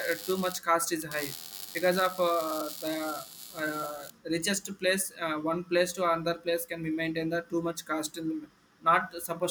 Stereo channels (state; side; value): identical; both; correlation 1.00